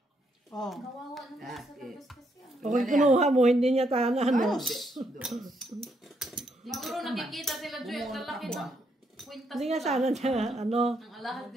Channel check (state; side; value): normal; both; correlation 0.76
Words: Oh. Kawawa naman sa Okay. labas kasi. Kung kinuha mo, hindi niya tahanan. No? Siguro nakikita sila, Joy, at lalaki ng kwintas Hindi nga nila. sana niya, ano. Ang alahas